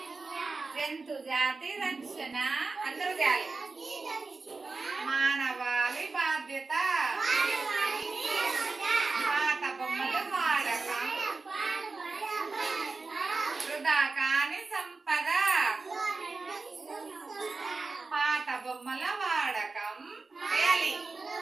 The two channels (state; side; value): quieter; left; 3.9 dB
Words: జంతు జాతి రక్షణ అందరూ చేయాలి. మానవాళి బాధ్యత. పాత బొమ్మలు వాడకం వృధా కాని సంపద. పాత బొమ్మల వాడకం చేయాలి.